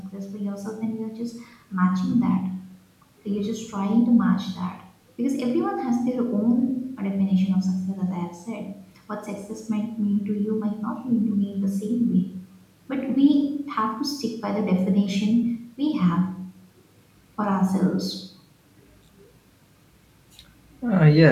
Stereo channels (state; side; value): identical; both; correlation 1.00